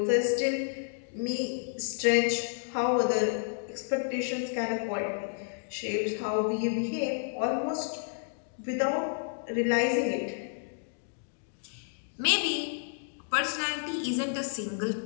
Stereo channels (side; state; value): right; silent; digital silence